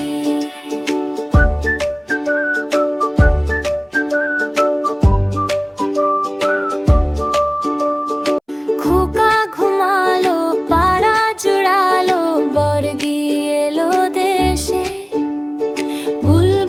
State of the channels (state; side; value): identical; both; correlation 1.00